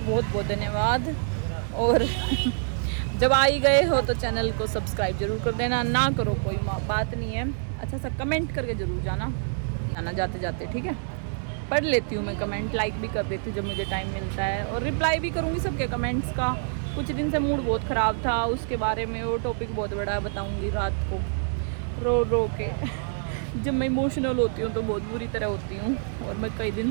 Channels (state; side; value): silent; left; digital silence